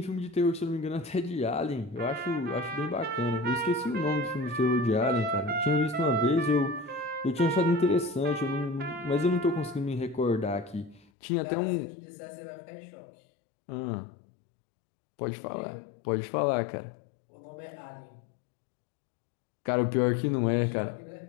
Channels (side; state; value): right; drops out; at 11.1 s